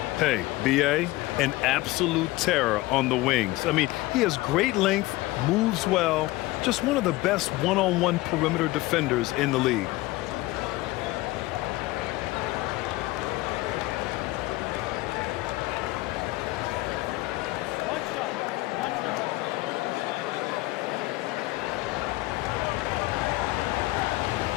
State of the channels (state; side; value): quieter; right; 19.4 dB